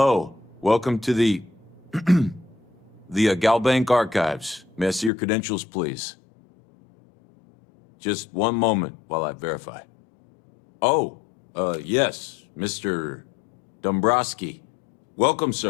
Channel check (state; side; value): drops out; right; at 5.1 s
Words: Welcome to the... the Galbank Archives. May I see your credentials, please? Just one moment while I verify. Oh, yes, Mr. Dombrowski. Welcome,